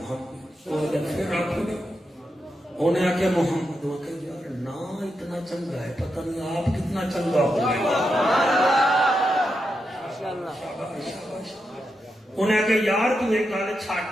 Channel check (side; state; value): both; normal; correlation 0.86